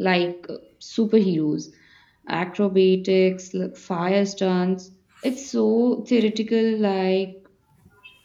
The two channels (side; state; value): both; identical; correlation 1.00